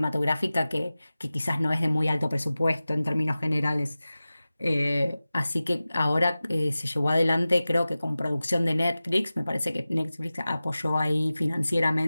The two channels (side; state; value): both; inverted; correlation -0.96